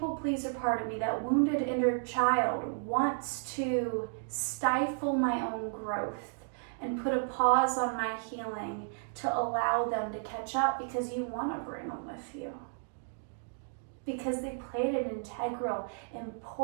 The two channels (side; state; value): left; silent; digital silence